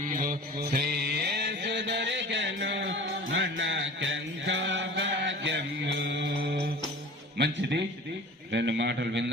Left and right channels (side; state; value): both; normal; correlation 0.40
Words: శ్రీయేసు దొరికెను మనకెంతో భాగ్యము. మంచిది, రెండు మాటలు